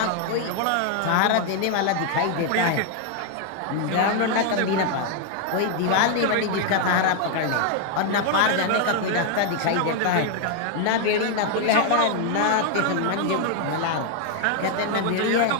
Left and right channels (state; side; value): different; both; correlation 0.00